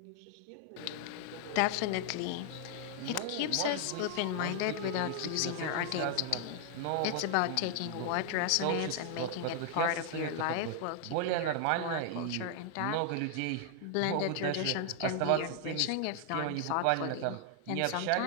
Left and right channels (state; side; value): different; both; correlation 0.00